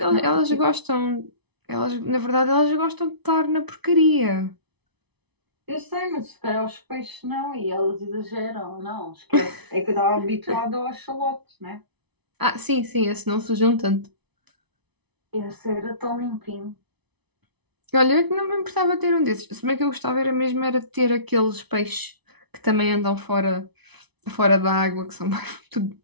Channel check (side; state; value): left; late; 0.99 ms